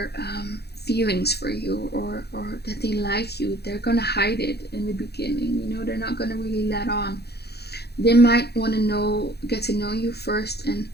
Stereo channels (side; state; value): right; late; 0.48 ms